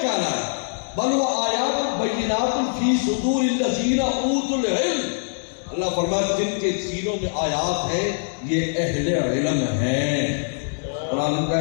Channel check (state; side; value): silent; right; 63 dB below the other